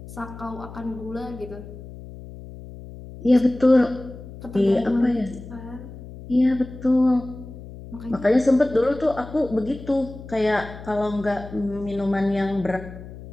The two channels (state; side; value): noise; left; hum, 14 dB below the sound